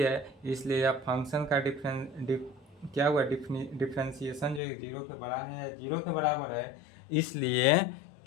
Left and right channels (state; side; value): drops out; right; at 4.6 s